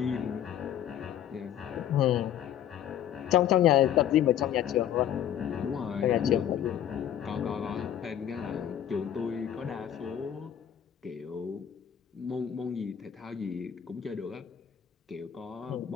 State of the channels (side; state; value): right; quieter; 10.2 dB